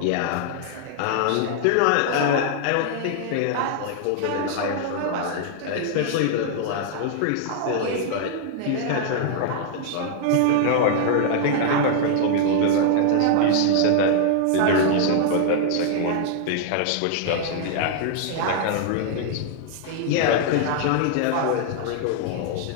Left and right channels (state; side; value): different; both; correlation -0.01